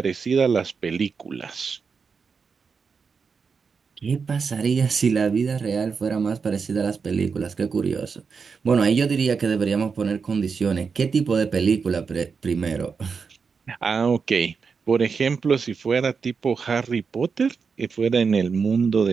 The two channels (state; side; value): quieter; left; 5.5 dB